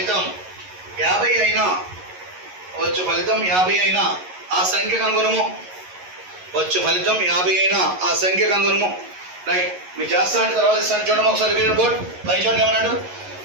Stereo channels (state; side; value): late; left; 11 ms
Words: 50 అయినా ఆ సంఖ్య కనుగొనము. వచ్చు ఫలితం 50 అయినా ఆ సంఖ్య కనుగొనము. రైట్, మీరు చేస్తా అంటే తర్వాత ఇస్తాను. చూడడం ఒకసారి బోర్డ్ పై చూడండి ఏమన్నాడు.